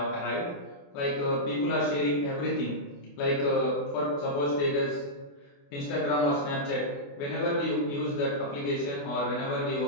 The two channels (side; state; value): right; late; 28 ms